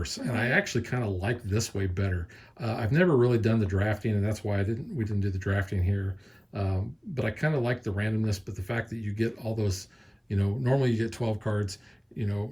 and I actually kind of like this way better. I've never really done the drafting, and that's why we didn't do the drafting here. But I kind of like the randomness, but the fact that you get all those, normally you get 12 cards,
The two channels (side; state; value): both; identical; correlation 1.00